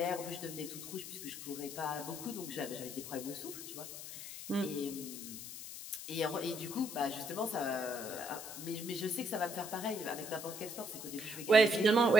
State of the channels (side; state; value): left; noise; hiss, 9 dB below the sound